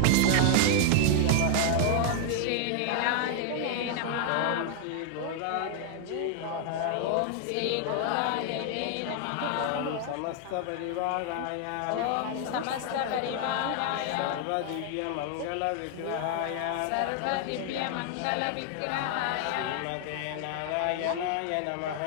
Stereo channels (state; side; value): different; both; correlation 0.00